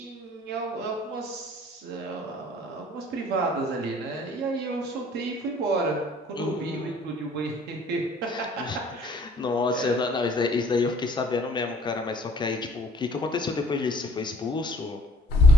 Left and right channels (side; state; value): both; normal; correlation 0.56